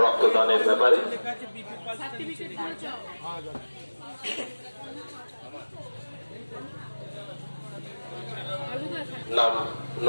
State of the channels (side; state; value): both; inverted; correlation -1.00